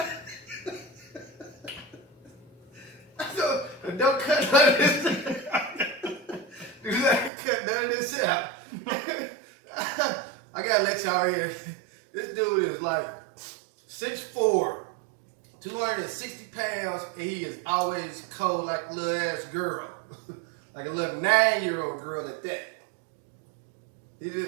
Don't cut none of this. Do not cut none of this out. I gotta let y'all hear. This dude is like 6'4", 260 pounds, and he is always cold like a little ass girl. Like a little 9-year-old girl at that. He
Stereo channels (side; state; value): left; drops out; at 7.3 s